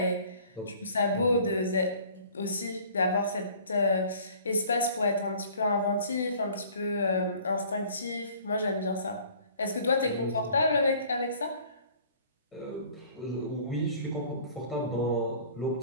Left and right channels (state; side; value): inverted; both; correlation -0.51